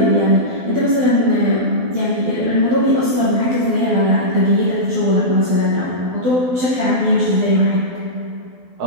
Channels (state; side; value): late; left; 12 ms